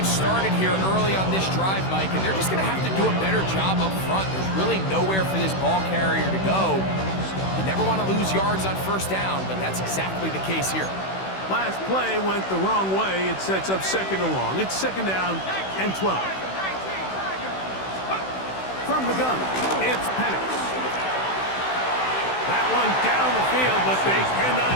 started here early on this drive, Mike, and they're just going to have to do a better job up front. There's really nowhere for this ball carrier to go. You never want to lose yards on 1st down, but that's exactly the case here. Last play went the wrong way. It sets up 2nd and long. It's 2nd down and 12. From the gun, it's Penix. That one down the field, but they cannot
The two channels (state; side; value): late; right; 16 ms